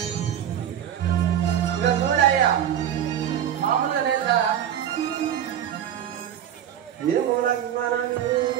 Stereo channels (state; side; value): quieter; left; 10.1 dB